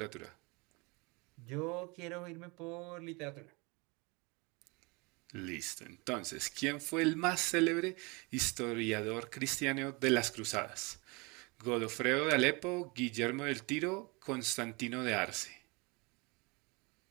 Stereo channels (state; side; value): quieter; left; 28.0 dB